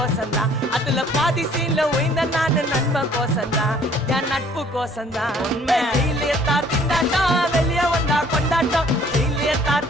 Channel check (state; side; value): normal; both; correlation 0.57